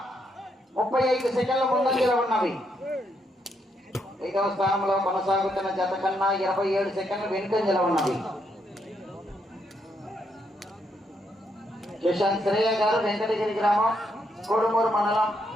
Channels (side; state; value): both; normal; correlation 0.77